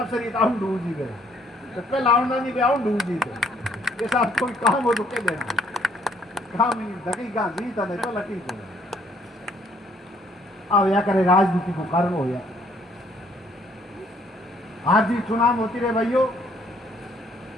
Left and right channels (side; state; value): both; normal; correlation 0.64